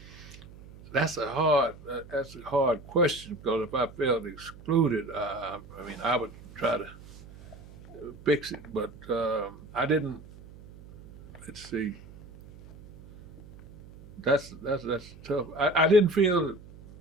That's a hard question, because if I felt excluded, I would try to fix it, but I didn't. Let's see. That's tough. I didn't feel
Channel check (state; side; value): noise; right; hum, 19 dB below the sound